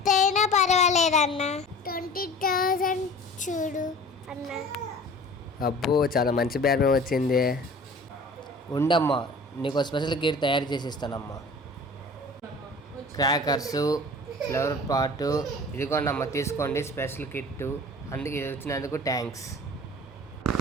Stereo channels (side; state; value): both; normal; correlation 0.43